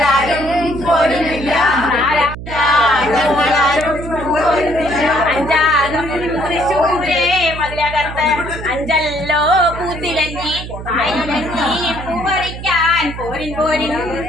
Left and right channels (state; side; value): noise; right; hum, 10 dB below the sound